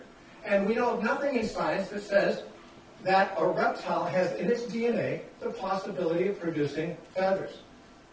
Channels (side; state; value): both; identical; correlation 1.00